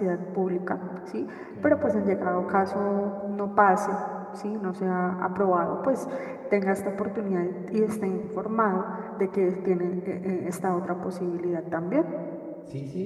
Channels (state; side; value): identical; both; correlation 1.00